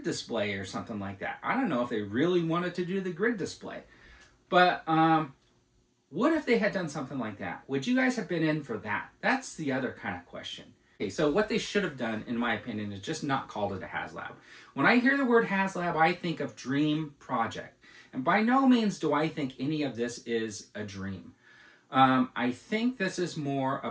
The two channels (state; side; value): identical; both; correlation 1.00